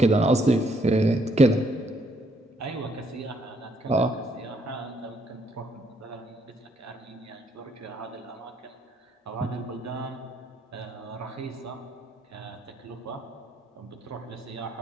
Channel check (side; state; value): both; normal; correlation 0.70